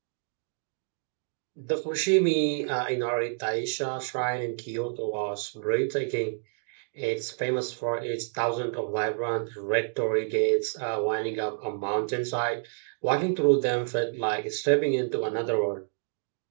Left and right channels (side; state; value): left; silent; 59 dB below the other